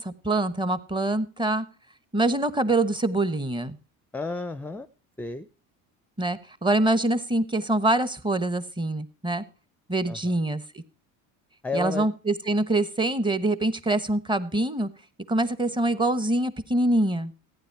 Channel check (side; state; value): both; normal; correlation 0.63